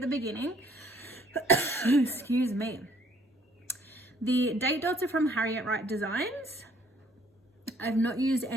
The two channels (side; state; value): both; normal; correlation 0.61